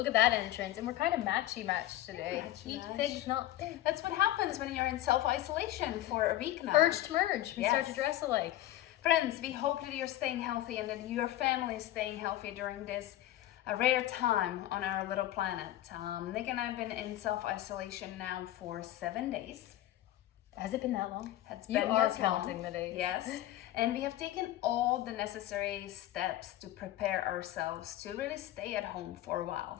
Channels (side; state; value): right; quieter; 14.4 dB